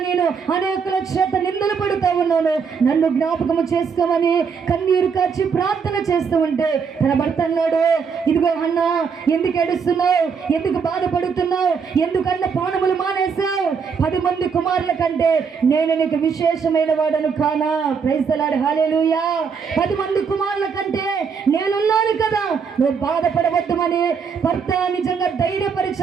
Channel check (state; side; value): quieter; left; 6.0 dB